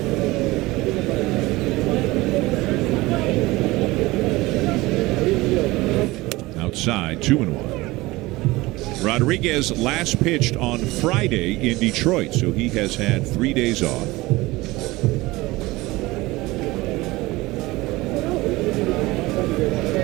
Outside, 2-1. Rodriguez last pitched on Friday in Detroit, so he has had 3 days off.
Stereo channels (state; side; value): quieter; left; 20.4 dB